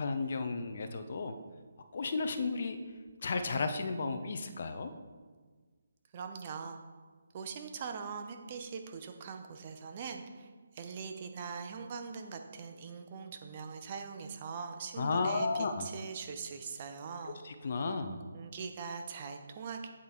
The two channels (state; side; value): inverted; both; correlation -0.78